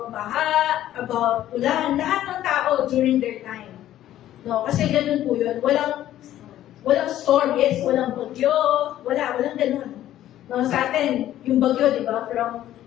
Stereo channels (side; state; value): right; quieter; 12.8 dB